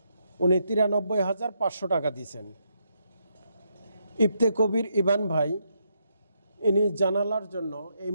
উনি 93,500 টাকা দিয়েছেন। ইফতে কবির ইবান ভাই, ইনি জানালার জন্য, এই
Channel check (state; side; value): inverted; both; correlation -0.78